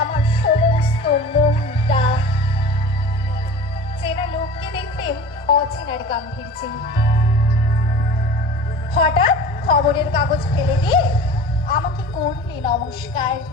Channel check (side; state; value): both; normal; correlation 0.38